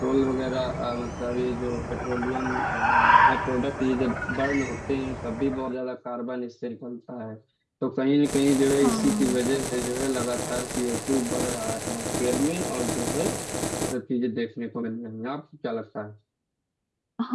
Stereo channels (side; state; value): both; identical; correlation 1.00